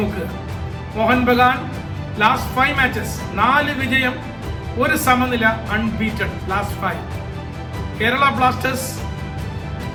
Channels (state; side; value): identical; both; correlation 1.00